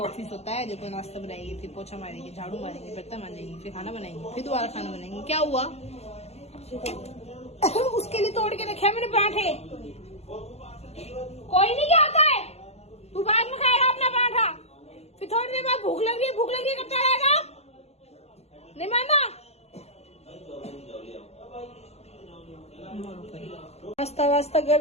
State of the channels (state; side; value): late; right; 0.31 ms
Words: होता है। देखो, नाश्ता बनाएंगे, फिर पोछा मारेंगे, झाड़ू मारेंगे, बर्तन मारेंगे, फिर खाना बनाएंगे, फिर दोबारा खाना बनाएंगे। क्या हुआ? उसके लिए तोड़ के रखे मैंने पराठे। कोई नहीं क्या आता है, तू बाद में खाएगा अपना पराठा। फिर थोड़ी देर बाद भूख लग रही है करता रहेगा। नहीं माना? नाश्ता वास्ता